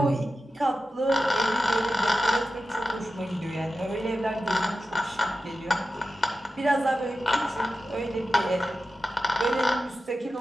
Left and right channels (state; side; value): normal; both; correlation 0.92